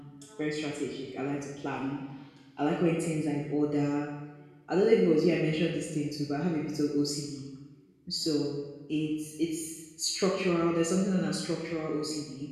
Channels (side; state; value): both; identical; correlation 1.00